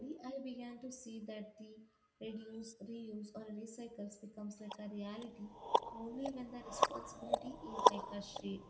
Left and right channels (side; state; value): both; identical; correlation 1.00